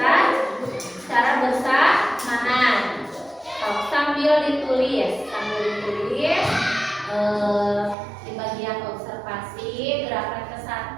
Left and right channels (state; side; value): drops out; left; at 8.0 s